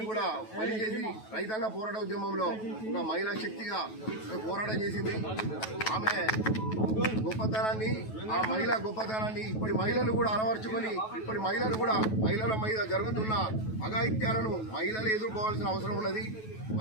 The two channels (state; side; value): late; right; 9.2 ms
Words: కూడా బలి చేసి రైతాంగ పోరాట ఉద్యమంలో ఒక మహిళా శక్తిగా పోరాటం చేసింది. ఆమె గొప్పతనాన్ని ఆ మహిళా గొప్పతనాన్ని ఇప్పటి మహిళలు కూడా అలవర్చుకొని ఇప్పటి మహిళలు కూడా మహిళల మీద జరుగుతున్న అఘాయిత్యాలను మహిళలు ఎదుర్కోవాల్సిన అవసరం ఉన్నది.